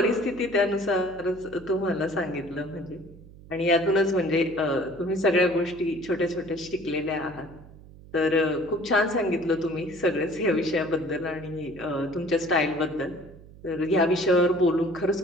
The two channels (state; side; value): noise; right; hum, 20 dB below the sound